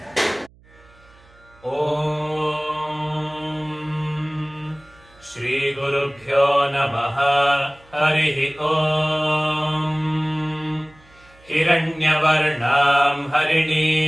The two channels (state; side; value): noise; right; hum, 28 dB below the sound